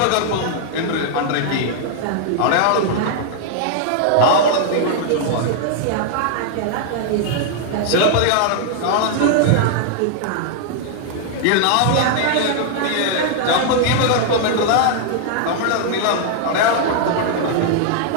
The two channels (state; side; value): different; both; correlation 0.00